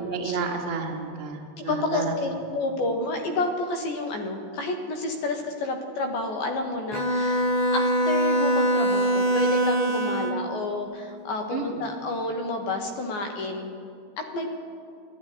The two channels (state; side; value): late; right; 14 ms